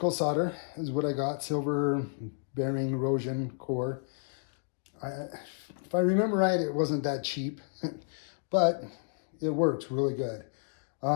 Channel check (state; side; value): silent; right; 57 dB below the other